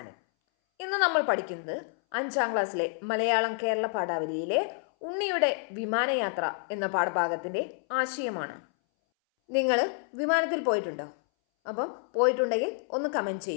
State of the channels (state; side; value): silent; right; 59 dB below the other